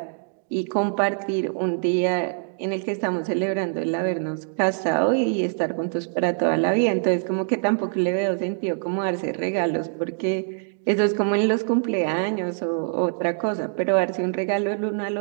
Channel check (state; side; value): silent; left; digital silence